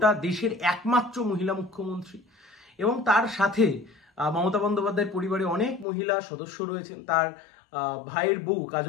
দেশের একমাত্র মহিলা মুখ্যমন্ত্রী। এবং তার সাথে মমতা বন্দ্যোপাধ্যায়ের পরিবারে অনেক মহিলা সদস্য রয়েছেন। তার ভাইয়ের বউ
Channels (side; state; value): right; drops out; at 5.9 s